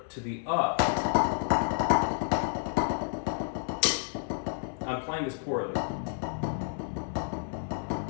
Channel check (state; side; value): silent; right; 58 dB below the other